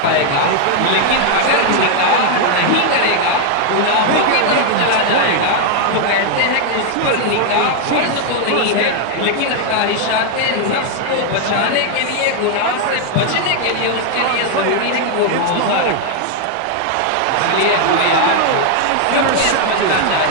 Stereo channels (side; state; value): both; different; correlation 0.00